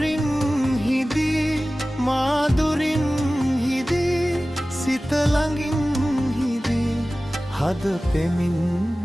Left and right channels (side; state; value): both; normal; correlation 0.97